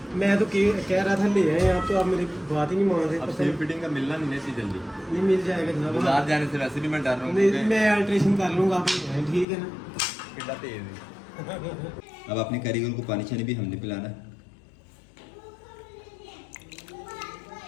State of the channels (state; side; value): drops out; right; at 9.5 s